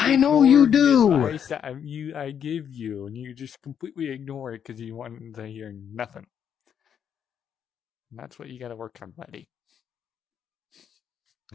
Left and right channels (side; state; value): right; quieter; 8.4 dB